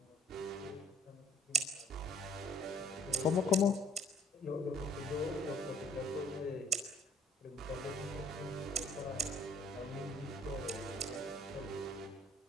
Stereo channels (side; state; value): both; normal; correlation 0.57